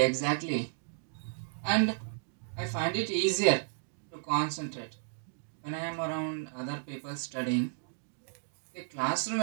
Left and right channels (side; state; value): left; silent; digital silence